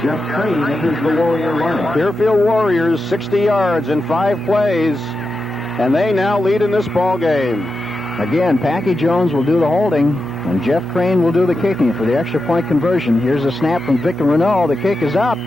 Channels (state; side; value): normal; both; correlation 0.89